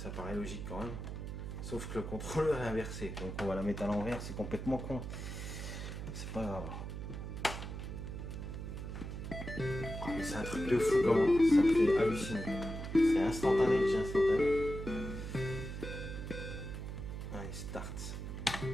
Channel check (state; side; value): noise; right; hum, 7 dB below the sound